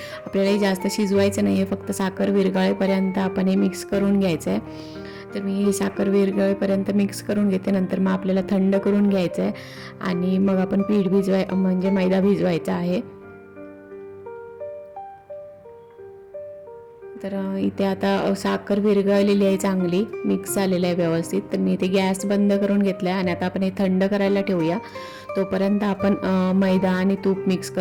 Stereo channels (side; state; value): both; identical; correlation 1.00